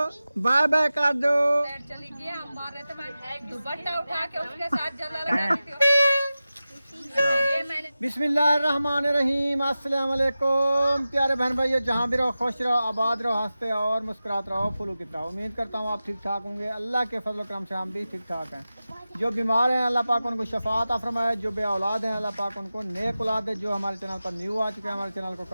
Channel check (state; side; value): inverted; both; correlation -0.95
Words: bye bye कर दो। चली गया, हम मार रहे थे, मैं दुपट्टा उठा के उसके साथ जला लगा रही थी। ये मैंने बिस्मिल्लाहिर्रहमानिर्रहीम, अस्सलाम वालेकुम प्यारे बहन भाइयों, जहाँ भी रहो खुश रहो, आबाद रहो, हंसते और मुस्कुराते रहो, फुलूकित रहो। उम्मीद करता हूँ आप ठीक ठाक होंगे। अल्लाह के फजल करम से हम भी ठीक ठाक हैं। जो बीमार हैं अल्लाह पाक उनको शफात अता फरमाए, जो बे औलाद हैं अल्लाह पाक उनको नेक औलाद दे। जो हमारे चैनल पर न्यू आ चुके हैं हमारे चैनल को